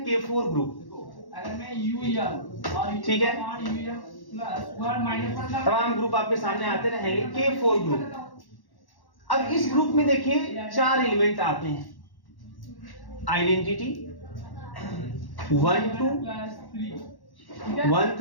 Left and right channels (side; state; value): right; late; 1.1 ms